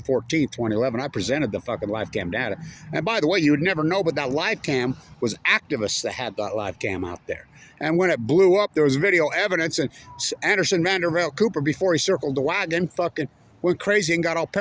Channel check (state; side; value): identical; both; correlation 1.00